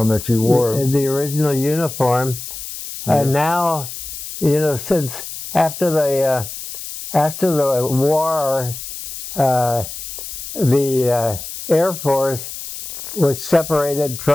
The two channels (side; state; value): left; noise; hiss, 10 dB below the sound